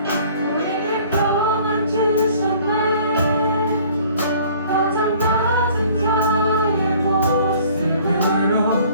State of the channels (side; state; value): both; inverted; correlation -0.54